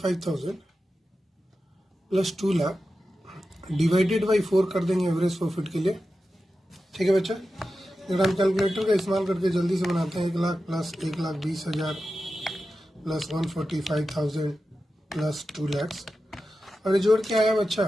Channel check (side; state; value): both; normal; correlation 0.92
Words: plus 2 lakh divided by 4 कर देंगे एवरेज प्रॉफिट के लिए, ठीक है बच्चा। अगर हम कैलकुलेटर का इस्तेमाल करके जल्दी से बनाते हैं, 1 lakh plus 1,20,000 plus 145,000 plus 2 lakh, और ये जोड़ के आया बच्चा